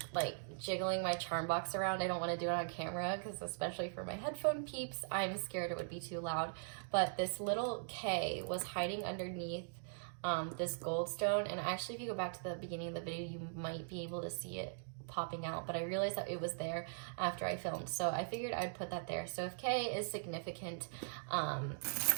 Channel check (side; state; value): left; silent; digital silence